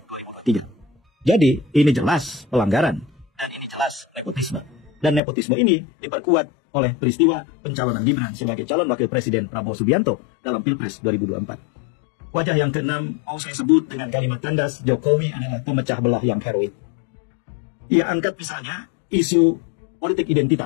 2023. Jadi ini jelas pelanggaran dan ini jelas nepotisme. Dan nepotisme ini diperkuat oleh peristiwa pencalonan Gibran sebagai calon wakil presiden Prabowo Subianto dalam Pilpres 2024. Wajah yang keenam mau saya sebut dengan kalimat tandas, Jokowi adalah pemecah belah yang heroik. Ia angkat misalnya isu politik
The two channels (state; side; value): drops out; right; at 5.2 s